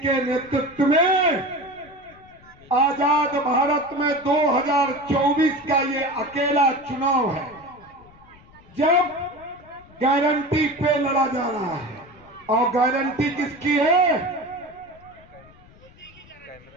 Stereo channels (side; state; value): left; noise; rumble, 25 dB below the sound